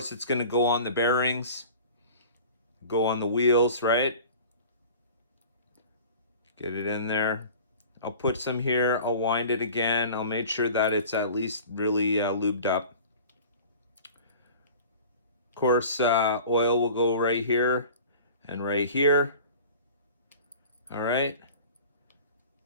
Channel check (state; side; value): inverted; both; correlation -0.41